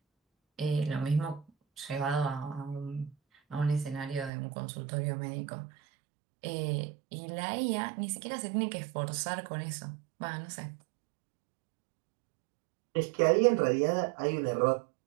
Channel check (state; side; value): drops out; left; at 4.3 s